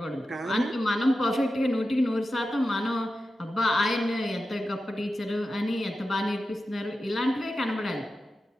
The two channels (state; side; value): normal; both; correlation 0.92